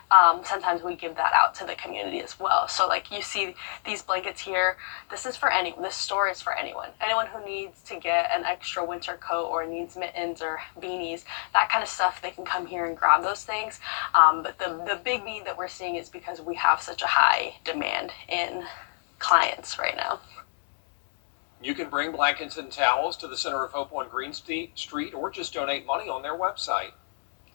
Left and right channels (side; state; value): right; silent; digital silence